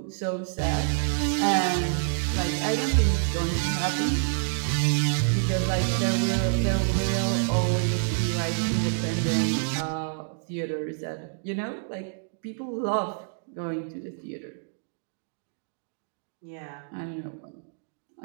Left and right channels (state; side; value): silent; left; digital silence